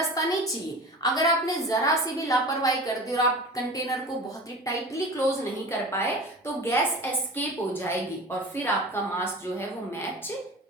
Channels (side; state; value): both; normal; correlation 0.35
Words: नहीं चाहिए। अगर आपने जरा सी भी लापरवाही कर दी और आप कंटेनर को बहुत ही टाइटली क्लोज नहीं कर पाए, तो गैस एस्केप हो जाएगी और फिर आपका मास जो है वो मैच